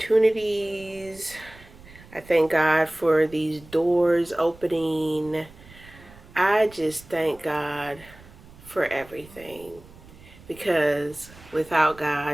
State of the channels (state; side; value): noise; right; rumble, 22 dB below the sound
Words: I thank God for these doors opening. I just thank God for everything, because without